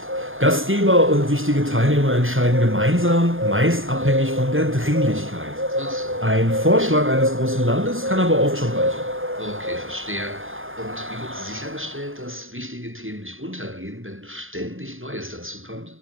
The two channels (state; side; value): late; left; 0.59 ms